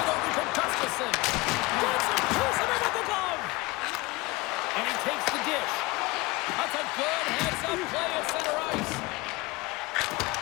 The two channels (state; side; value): quieter; right; 22.9 dB